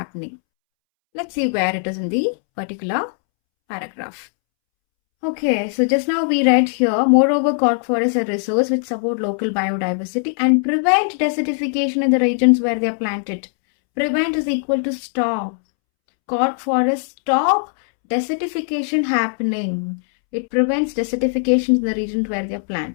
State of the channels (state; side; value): silent; right; 66 dB below the other